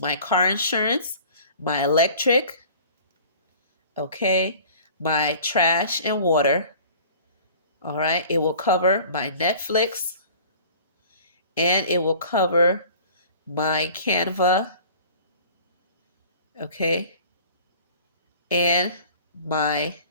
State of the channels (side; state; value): both; inverted; correlation -0.46